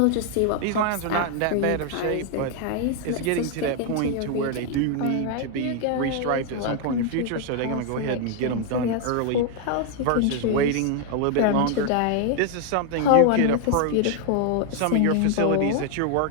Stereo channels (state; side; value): different; both; correlation 0.00